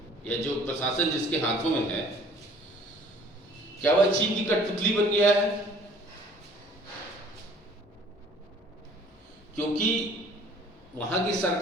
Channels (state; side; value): normal; both; correlation 0.53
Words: या जो प्रशासन जिसके हाथों में है, क्या वह चीन की कठपुतली बन गया है? क्योंकि वहां की